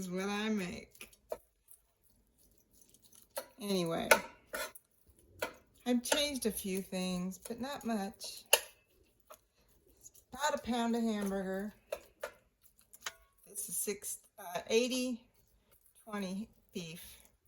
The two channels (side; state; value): both; identical; correlation 1.00